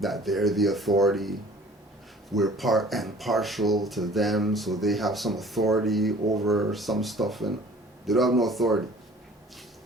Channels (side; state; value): both; normal; correlation 0.50